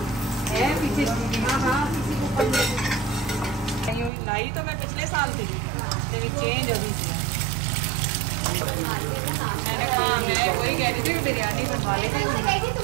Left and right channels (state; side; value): drops out; left; at 4.1 s